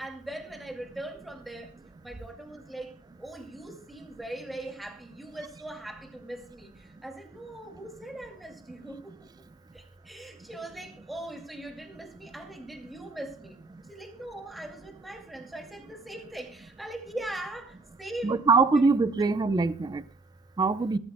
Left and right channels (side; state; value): left; quieter; 3.4 dB